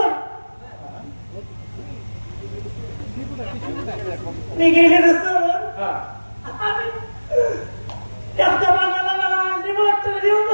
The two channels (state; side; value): inverted; both; correlation -1.00